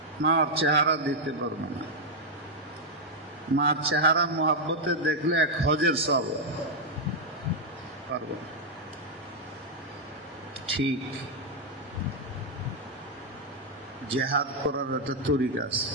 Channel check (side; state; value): both; normal; correlation -0.01